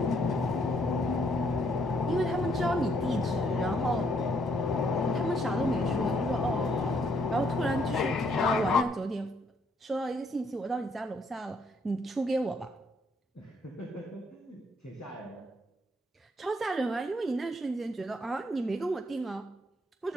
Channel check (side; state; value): both; normal; correlation 0.70